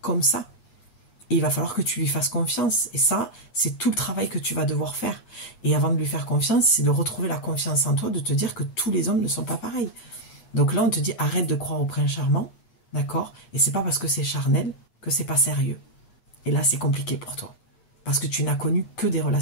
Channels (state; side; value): late; right; 8.2 ms